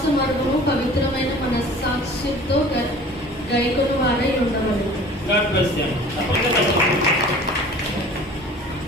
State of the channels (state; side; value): normal; both; correlation 0.45